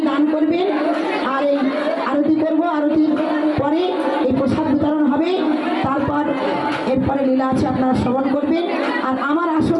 দান করবেন, আর এই আরতি করবো, আরতির পরে এই প্রসাদ বিতরণ হবে, তারপর এরপরে লীলা আছে, আপনারা শ্রবণ করবেন। আর আমার আসর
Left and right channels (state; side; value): identical; both; correlation 1.00